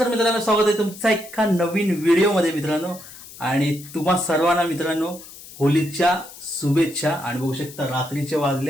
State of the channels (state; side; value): noise; left; hiss, 17 dB below the sound